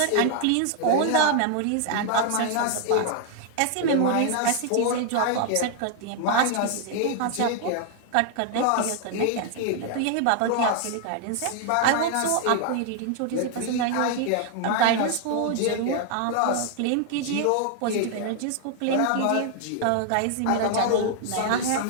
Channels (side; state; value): both; different; correlation 0.00